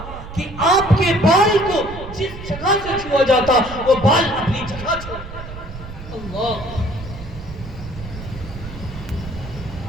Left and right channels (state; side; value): noise; right; rumble, 12 dB below the sound